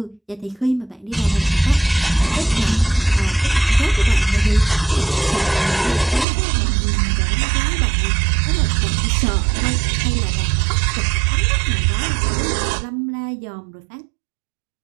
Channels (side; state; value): left; drops out; at 6.2 s